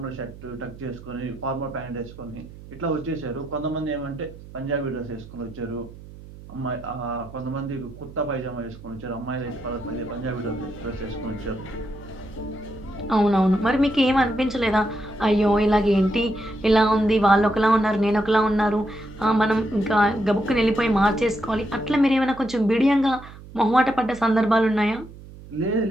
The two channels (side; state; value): right; noise; hum, 17 dB below the sound